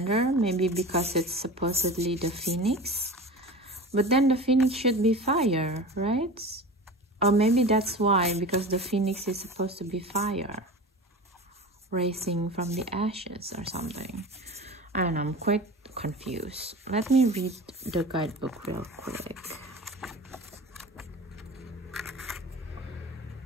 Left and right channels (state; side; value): normal; both; correlation 0.33